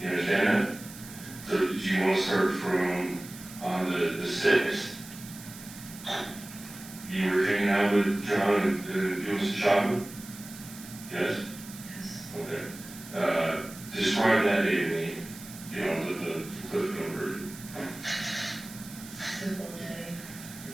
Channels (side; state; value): right; noise; hiss, 15 dB below the sound